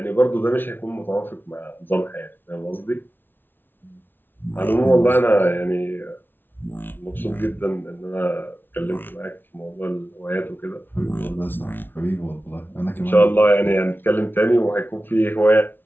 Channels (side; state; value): right; late; 0.098 ms